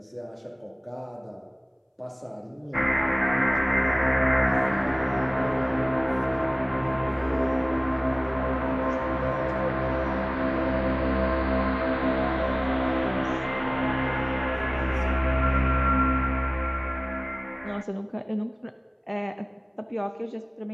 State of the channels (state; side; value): identical; both; correlation 1.00